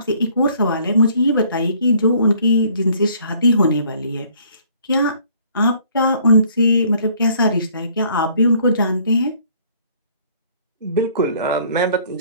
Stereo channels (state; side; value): inverted; both; correlation -0.59